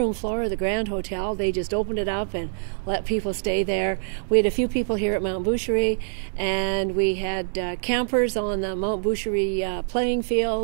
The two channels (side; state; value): left; silent; digital silence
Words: floor of the Grand Hotel. They just opened it up and let people stay there. We had a few people here at Mt Boucherie, and we had campers on the Mt Boucherie playing